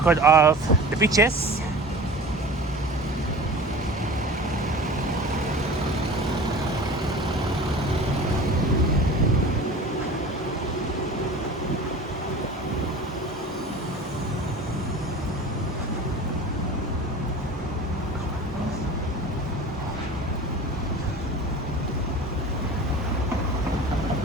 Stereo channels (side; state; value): both; normal; correlation 0.38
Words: of the beaches.